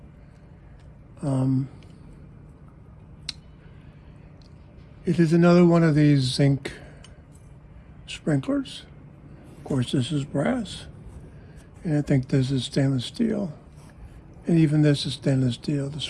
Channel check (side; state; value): both; identical; correlation 1.00